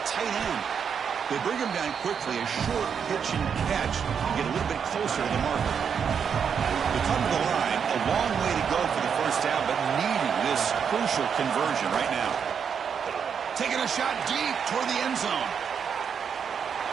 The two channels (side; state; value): left; quieter; 7.1 dB